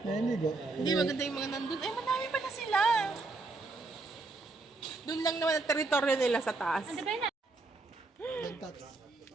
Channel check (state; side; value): quieter; left; 3.5 dB